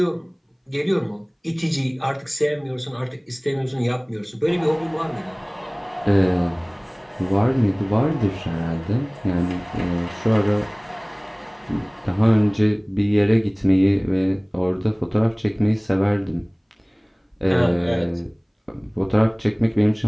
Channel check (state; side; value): identical; both; correlation 1.00